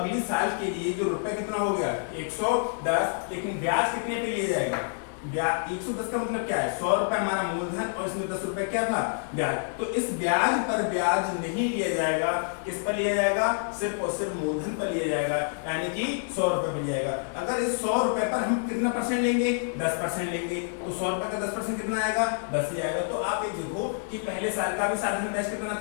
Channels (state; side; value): silent; right; digital silence